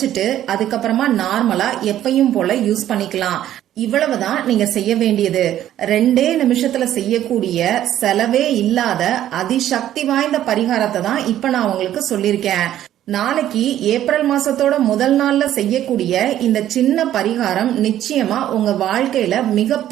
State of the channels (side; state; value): left; quieter; 12.1 dB